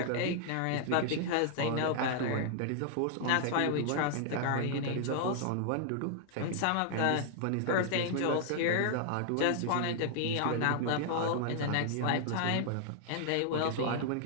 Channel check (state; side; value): different; both; correlation 0.00